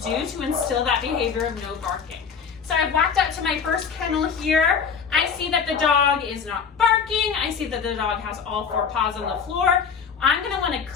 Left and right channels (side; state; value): right; quieter; 6.4 dB